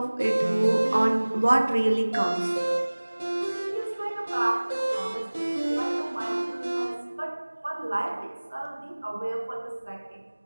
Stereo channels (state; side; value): inverted; both; correlation -1.00